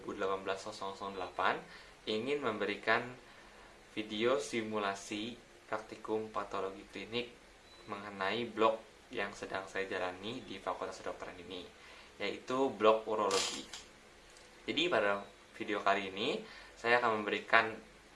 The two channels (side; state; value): both; identical; correlation 1.00